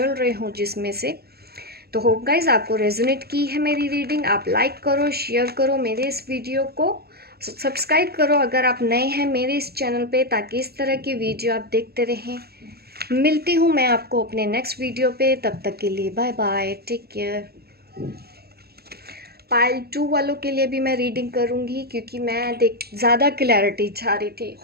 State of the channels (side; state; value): left; late; 0.46 ms